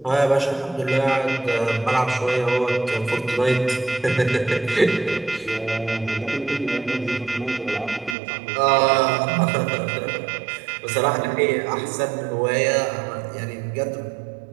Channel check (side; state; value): left; drops out; at 8.2 s